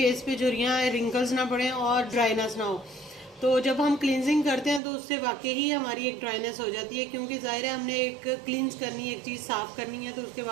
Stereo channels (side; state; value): left; drops out; at 4.8 s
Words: पे झुर्रियाँ रिंकल्स ना पड़ें और ड्राइनेस ना हो। तो जब हम क्लींजिंग करते हैं तो उससे वाकई ही हमारी एक ड्राइनेस हो जाती है, क्योंकि ज़ाहिर है हमने एक क्लींस करनी है, एक चीज़ साफ़ करनी है, तो उसके